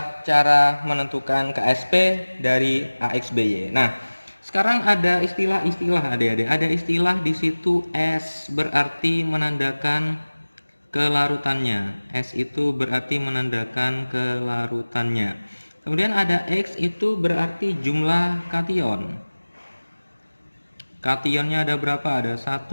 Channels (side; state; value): both; inverted; correlation -1.00